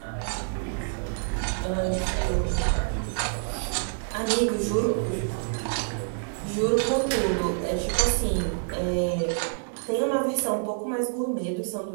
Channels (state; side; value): silent; left; digital silence